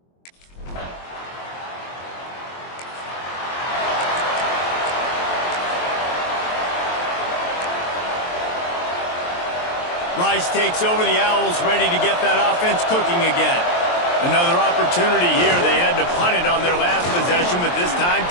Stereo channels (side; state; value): right; late; 23 ms